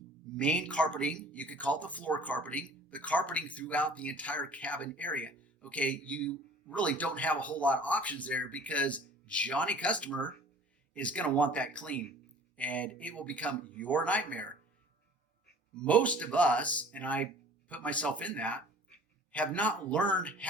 main carpeting. You could call it the floor carpeting, the carpeting throughout the entire cabin area. Okay, you really don't have a whole lot of options there because Johnny customer is going to want that clean, and it will become your nightmare. Most of us, and I put myself in that, have not learned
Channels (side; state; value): both; normal; correlation 0.48